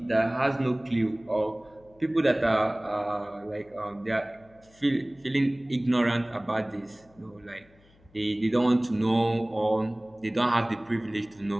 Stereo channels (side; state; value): left; noise; hum, 29 dB below the sound